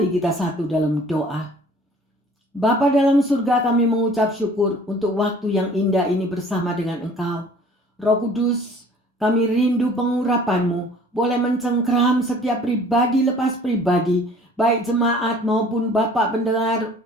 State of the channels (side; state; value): both; normal; correlation 0.51